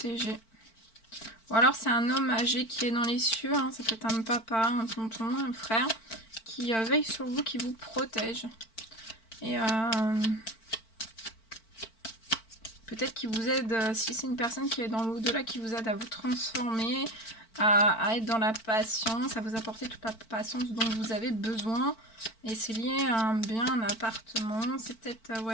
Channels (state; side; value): late; right; 4.5 ms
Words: Ou alors c'est un homme âgé qui est dans les cieux. Hein. Ça peut être un papa, un tonton, un frère qui veille sur vous, qui vous protège. Et peut-être qu'il vous aide, si c'est une personne qui est dans l'au-delà, qui vous aide à vous transformer, à être dans la patience, à vous apporter toute la patience dont vous avez besoin. Et c'est lié à un bien, un appartement. C'est peut-être